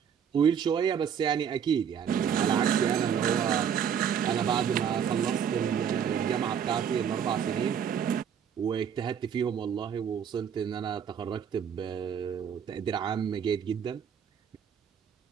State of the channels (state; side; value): quieter; left; 8.0 dB